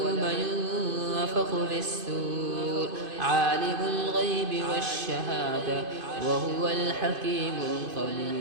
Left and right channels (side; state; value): left; late; 2.5 ms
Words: ينفخ في السور عالم الغيب والشهادة وهو الحكيم